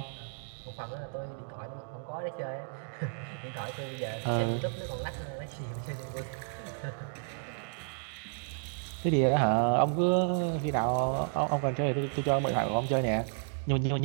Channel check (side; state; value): left; silent; digital silence